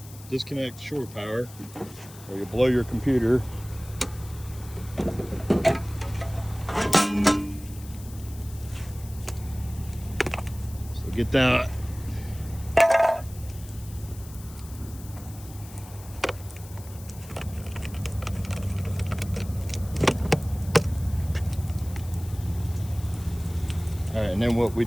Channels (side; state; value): left; noise; hiss, 19 dB below the sound